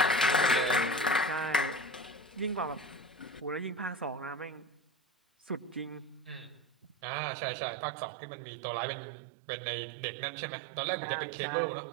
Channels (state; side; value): drops out; left; at 7.0 s